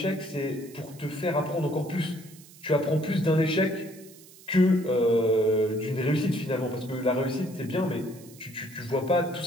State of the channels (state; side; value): noise; right; hiss, 22 dB below the sound